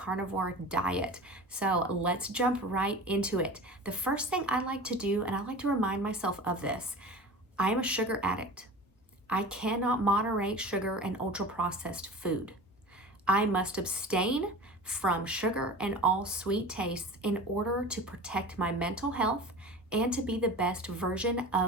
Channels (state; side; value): normal; both; correlation 0.35